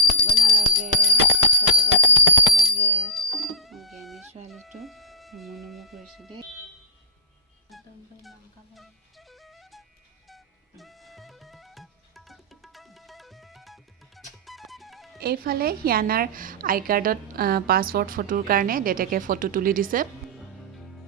নালাগে জ্ঞানী ছোৱালীটো নমু কৰিছে দেই এইফালে হিয়ানাৰ আই কাৰ্ডত পাছপৰ্ট ফটোৰ কাৰণে দেউতাকে ফটো তুলি দিছে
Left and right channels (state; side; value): normal; both; correlation -0.07